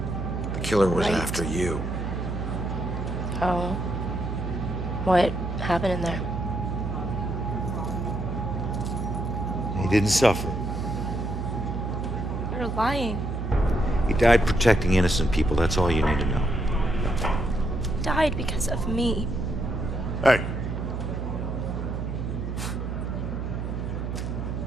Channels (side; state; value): right; noise; hum, 4 dB below the sound